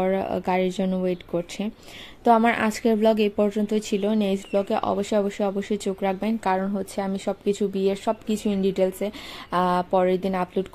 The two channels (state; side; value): identical; both; correlation 1.00